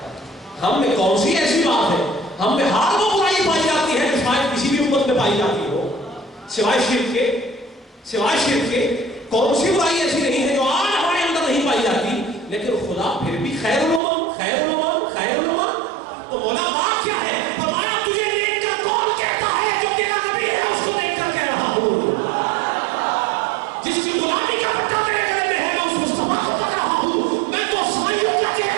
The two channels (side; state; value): left; drops out; at 14.0 s